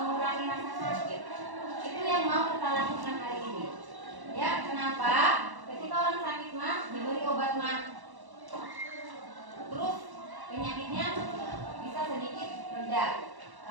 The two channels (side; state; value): left; late; 1.1 ms